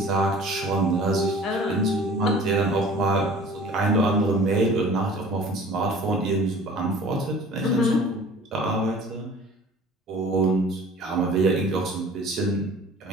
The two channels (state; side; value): normal; both; correlation 0.46